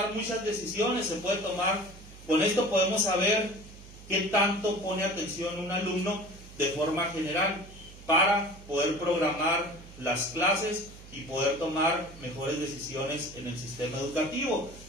muchas decisiones, con esto podemos saber qué tanto pone atención un alumno de forma general para poder programar las clases y poder tomar mejores decisiones en el sistema educativo.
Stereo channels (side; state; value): right; noise; hum, 18 dB below the sound